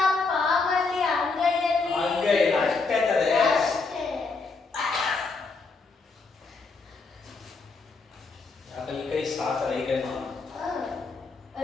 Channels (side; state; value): right; quieter; 4.1 dB